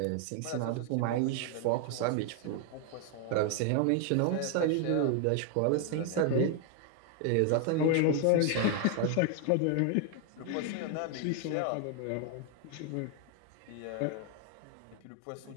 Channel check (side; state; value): both; different; correlation 0.00